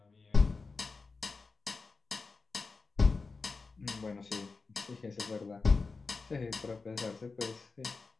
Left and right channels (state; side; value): quieter; right; 4.2 dB